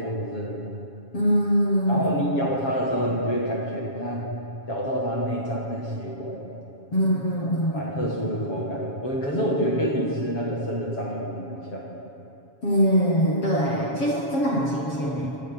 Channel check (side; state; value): right; late; 7.3 ms